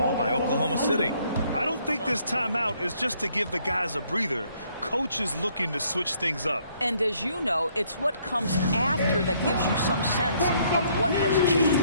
by Oklahoma City. I don't think this timeout is just to give the guys a breather. Coach is looking to switch things up. And as you know, it's what comes after that gives you some sense of what has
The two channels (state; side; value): inverted; both; correlation -0.66